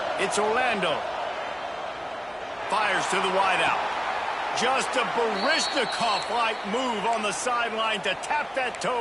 it's Orlando. Fires to the wideout. Just a Baryshnikov-like move on the sideline to tap that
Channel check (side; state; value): both; identical; correlation 1.00